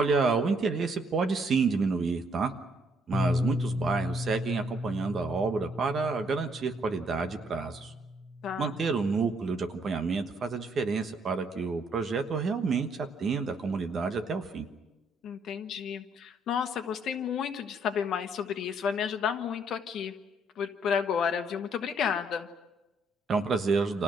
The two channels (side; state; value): both; normal; correlation 0.69